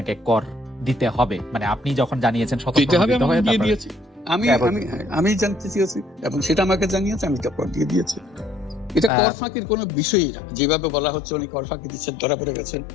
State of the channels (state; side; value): drops out; right; at 9.1 s